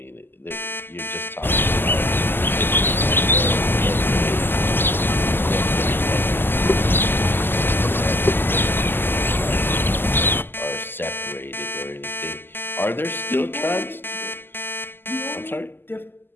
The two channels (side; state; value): right; late; 0.097 ms